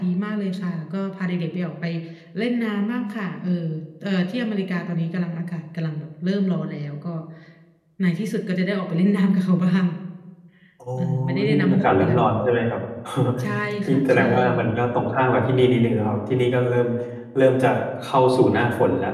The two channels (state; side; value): identical; both; correlation 1.00